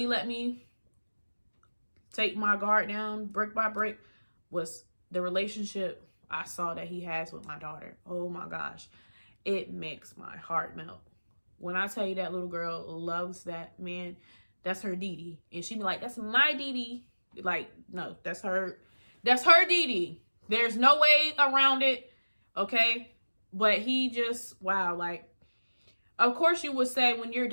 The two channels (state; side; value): inverted; both; correlation -1.00